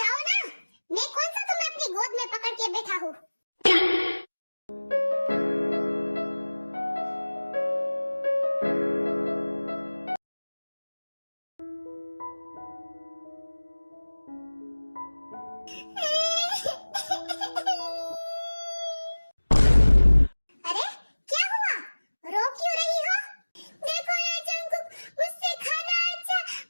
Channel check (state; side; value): inverted; both; correlation -1.00